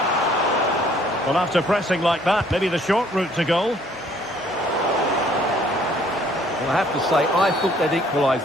Well, after pressing like that, maybe the short route to goal. Well, I have to say, I thought they'd equalise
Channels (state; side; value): normal; both; correlation 0.60